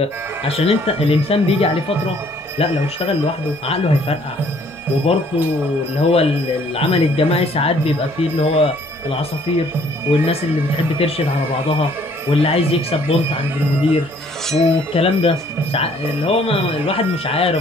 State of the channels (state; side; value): normal; both; correlation 0.61